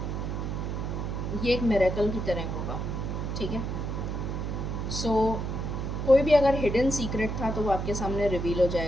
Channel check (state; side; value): noise; right; hum, 3 dB below the sound